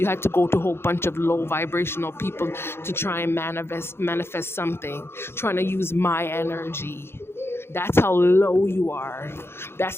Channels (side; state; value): right; late; 0.12 ms